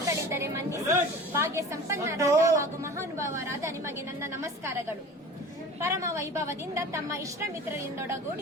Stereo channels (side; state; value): both; normal; correlation 0.38